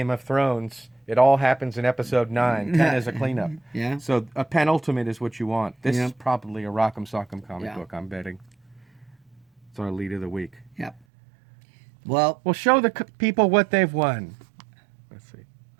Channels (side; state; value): left; drops out; at 11.0 s